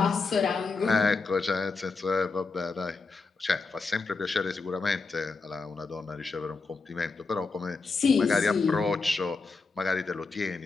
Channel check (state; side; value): quieter; right; 4.2 dB